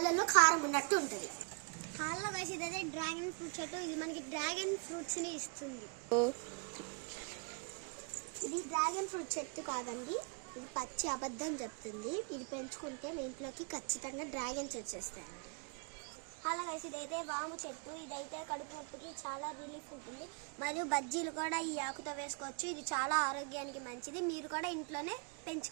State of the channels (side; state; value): left; quieter; 37.1 dB